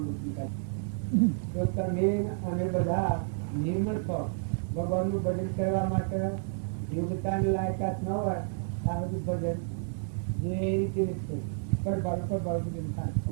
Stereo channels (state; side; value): silent; left; 58 dB below the other